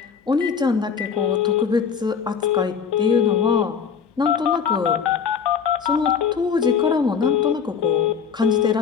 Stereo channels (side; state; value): right; quieter; 6.7 dB